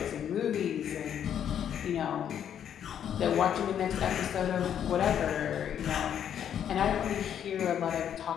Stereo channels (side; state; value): right; quieter; 9.3 dB